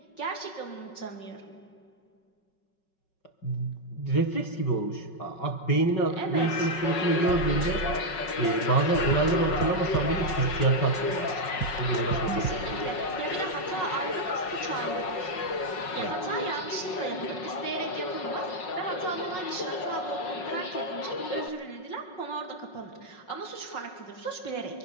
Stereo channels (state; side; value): late; right; 5.4 ms